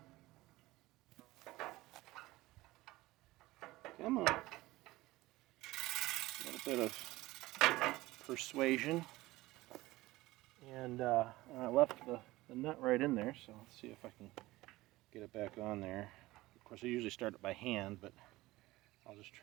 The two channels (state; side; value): quieter; left; 18.7 dB